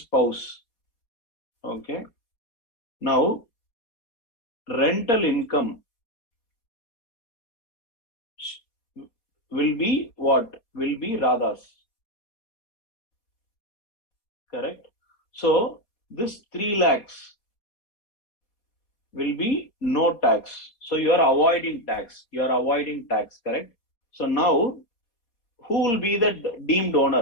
Okay. Now, rental income will be what? Will be Radha's. Correct? So, this 3 lakhs will be no tax. So, you are avoiding tax. You are avoiding tax, correct? So, now, who will be the deemed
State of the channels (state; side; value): late; right; 4.2 ms